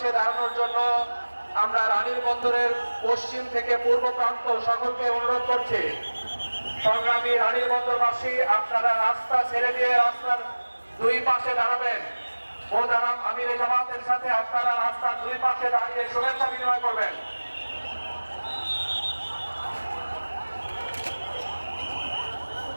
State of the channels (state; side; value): inverted; both; correlation -1.00